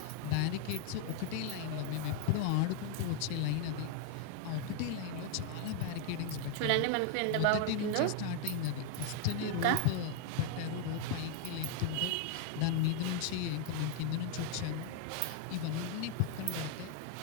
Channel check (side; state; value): both; different; correlation 0.00